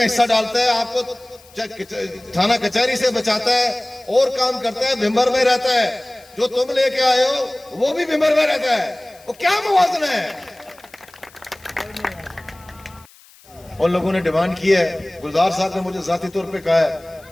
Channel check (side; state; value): left; noise; hiss, 26 dB below the sound